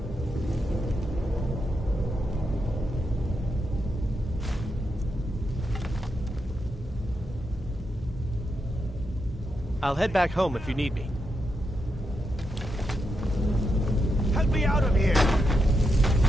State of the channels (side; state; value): both; normal; correlation 0.84